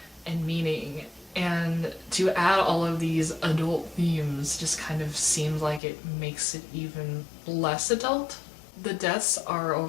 and meaning. And to add all of these adult themes just kind of seems like it makes it even less adult. The deaths are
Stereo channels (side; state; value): right; drops out; at 5.8 s